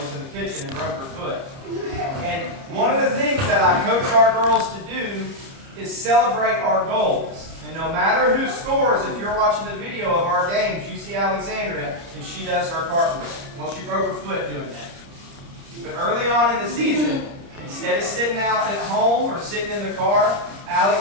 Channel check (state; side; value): late; left; 30 ms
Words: in the kitchen and broke her foot. And one of the things that I coach our girls to do is celebrate our goals. And no matter who scores, if you're watching the video of our games, you see Alexandria, and she does her cartwheel. Well, she broke her foot doing that. But early on in the season, instead of sitting out at home or sitting in the car,